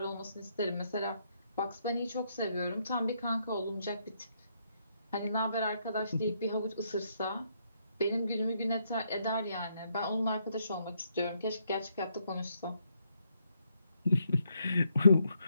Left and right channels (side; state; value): both; inverted; correlation -0.75